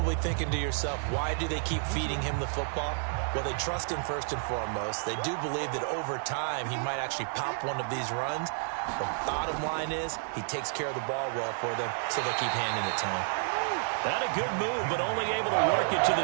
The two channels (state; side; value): silent; left; 57 dB below the other